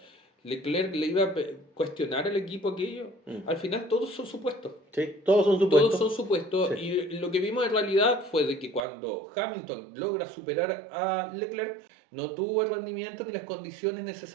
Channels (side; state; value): left; drops out; at 8.8 s